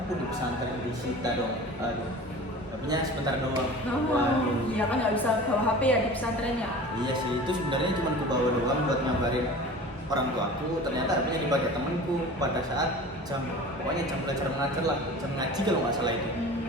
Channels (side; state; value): both; normal; correlation 0.38